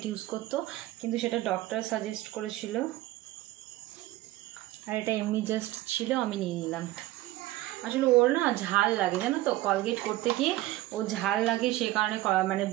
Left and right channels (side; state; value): left; quieter; 16.7 dB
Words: ইউজ করতো, কিন্তু সেটা ডক্টর সাজেস্ট করেছিল, আর এটা এমনি জাস্ট ছিল, আমি নিয়ে নিলাম। আসলে ওর না ঝাল লাগে, জানো তো, কলগেট করতে গিয়ে ও ঝাল লাগে, সে কারণে মানে